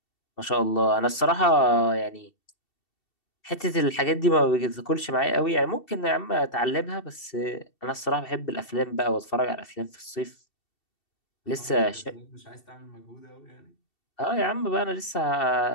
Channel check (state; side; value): late; right; 2.7 ms